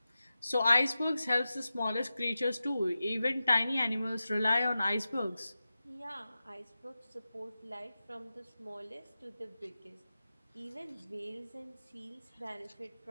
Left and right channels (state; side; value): inverted; both; correlation -0.93